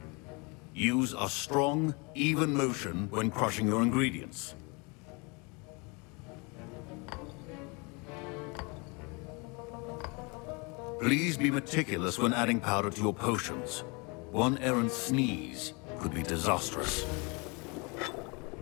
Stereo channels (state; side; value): quieter; right; 30.1 dB